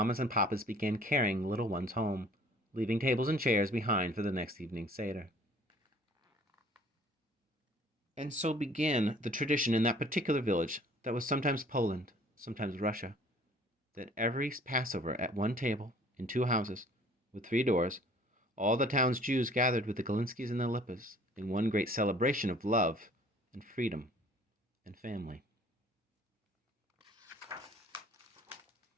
and papas began carrying little ones home, leaving tables and chairs behind for the next evening's Seder. And so began the tradition in that particular village that was sometimes Poland, sometimes Russia, that every Passover at one table, in 2 houses, with 3 doors, all the town's Jews gathered with the Galinskys and the Lipas in one great celebration of love and freedom and family.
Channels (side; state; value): both; normal; correlation 0.53